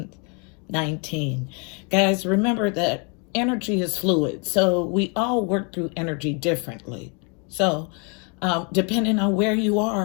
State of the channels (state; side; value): quieter; right; 35.3 dB